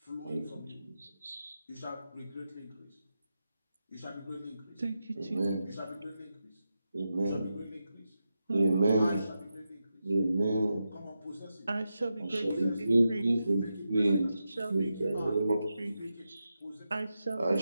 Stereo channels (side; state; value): both; inverted; correlation -0.89